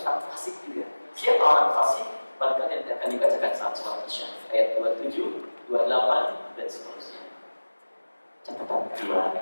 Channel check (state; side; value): inverted; both; correlation -1.00